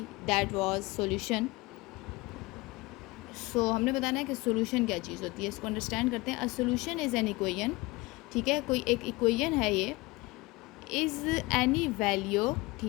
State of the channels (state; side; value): quieter; right; 22.7 dB